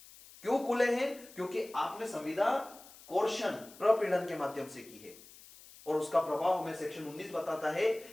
क्यों खुले हैं? क्योंकि आपने संविदा कोर्शन प्रपीड़न के माध्यम से की है, और उसका प्रभाव हमें सेक्शन 19 बताता है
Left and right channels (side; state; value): left; noise; hiss, 20 dB below the sound